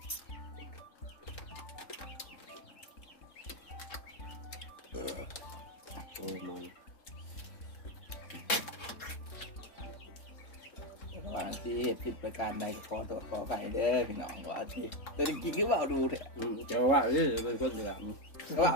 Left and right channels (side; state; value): right; late; 3.8 ms